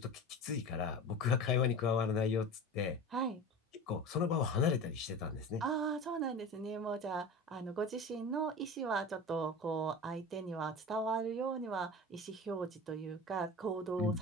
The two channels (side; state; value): both; normal; correlation 0.32